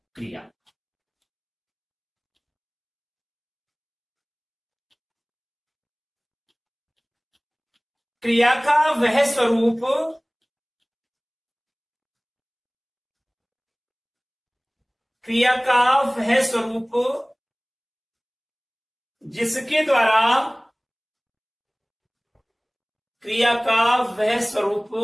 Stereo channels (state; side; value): identical; both; correlation 1.00